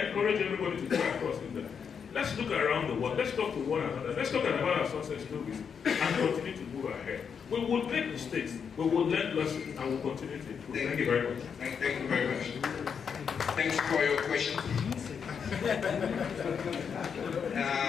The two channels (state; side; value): quieter; right; 6.8 dB